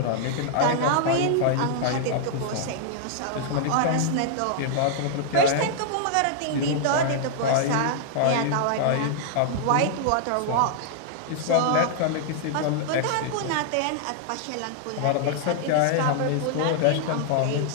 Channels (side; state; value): both; different; correlation -0.01